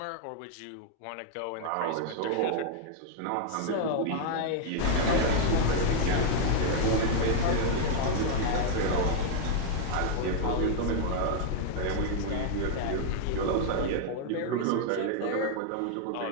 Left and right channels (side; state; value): both; different; correlation 0.00